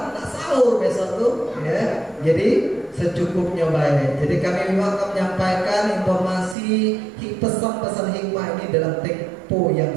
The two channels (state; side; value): drops out; left; at 6.6 s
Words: nak sahur besok tuh ya. Jadi secukupnya baik. Jadi kami akan menyampaikan informasi pesan-pesan hikmah ini dalam tempo